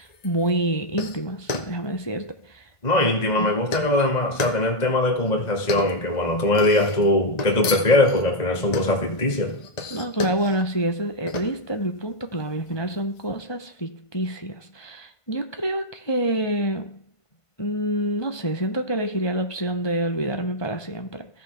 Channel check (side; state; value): right; late; 1.5 ms